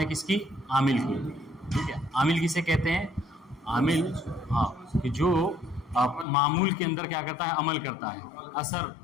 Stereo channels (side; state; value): right; drops out; at 6.2 s